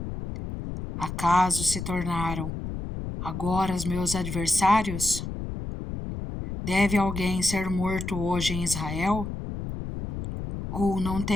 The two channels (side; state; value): left; noise; rumble, 6 dB below the sound